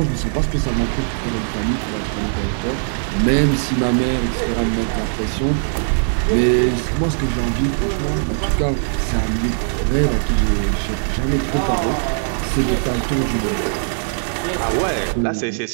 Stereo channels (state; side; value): silent; left; digital silence